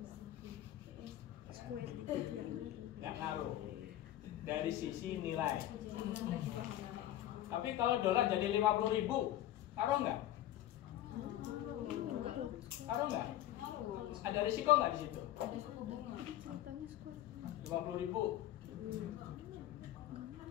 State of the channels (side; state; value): right; quieter; 13.3 dB